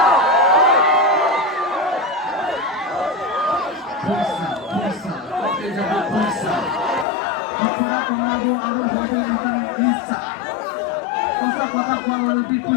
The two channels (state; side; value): drops out; right; at 7.1 s